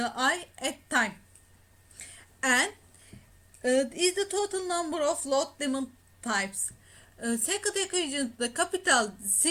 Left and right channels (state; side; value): identical; both; correlation 1.00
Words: at time, and is the total number of load demand types. Second equation, the capital